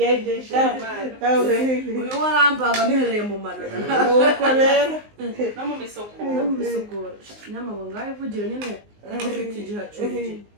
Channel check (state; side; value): late; left; 19 ms